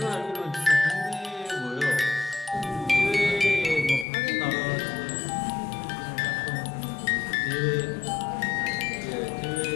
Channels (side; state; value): right; drops out; at 4.0 s